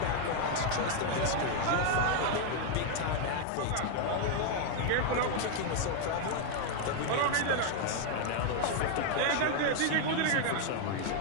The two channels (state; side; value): different; both; correlation 0.00